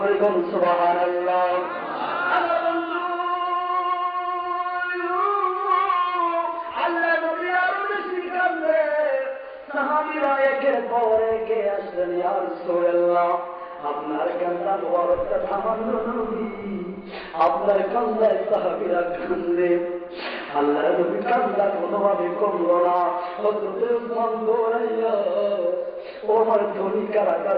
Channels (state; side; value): identical; both; correlation 1.00